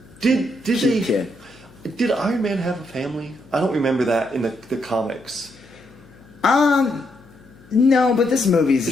Did cute kid. Did Iron Man have a family? I don't remember that in the comics. No, but this movie's a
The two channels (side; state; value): left; noise; hum, 25 dB below the sound